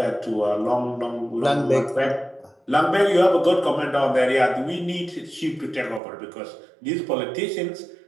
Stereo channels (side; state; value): left; drops out; at 6.0 s